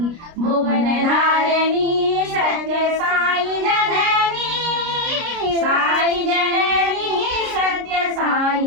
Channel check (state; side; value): late; left; 29 ms